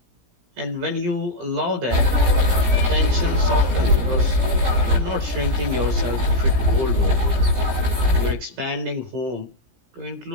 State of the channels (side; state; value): left; late; 17 ms